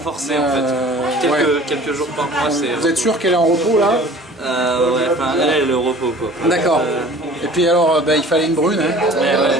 forcé en fait. ouais. Quelques jours par mois, c'est. Vous êtes sûr qu'elle est en repos là? Ouais, enfin, elle est au repos quoi. D'accord. Et puis alors, il fallait une brune, hein. Ouais.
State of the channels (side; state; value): both; normal; correlation 0.47